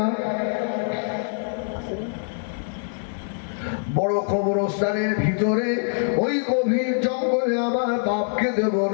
বড় কবরস্থানের ভিতরে ওই গভীর জঙ্গলে আমার বাপকে দেব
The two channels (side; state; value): right; silent; 62 dB below the other